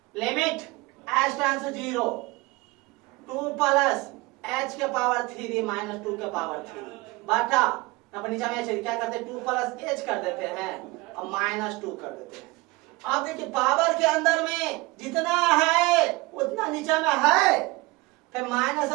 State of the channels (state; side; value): quieter; left; 23.1 dB